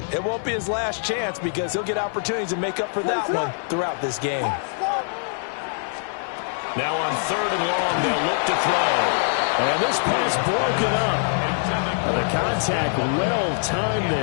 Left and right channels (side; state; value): right; silent; digital silence